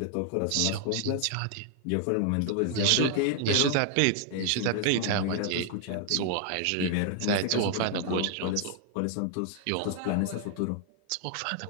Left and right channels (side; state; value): both; different; correlation 0.00